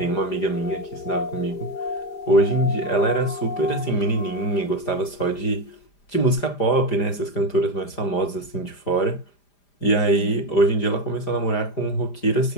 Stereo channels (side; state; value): right; late; 5.0 ms